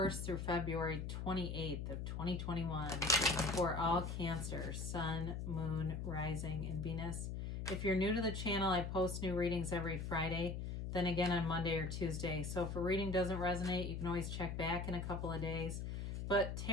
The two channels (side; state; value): left; noise; hum, 4 dB below the sound